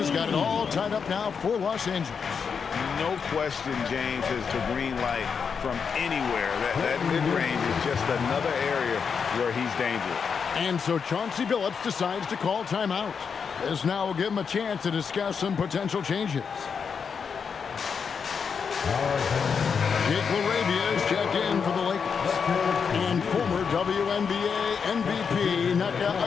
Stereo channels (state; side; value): quieter; right; 6.2 dB